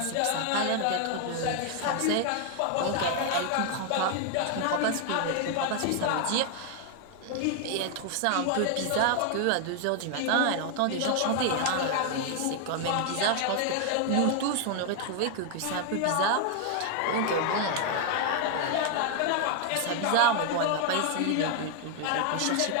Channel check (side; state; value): both; different; correlation 0.00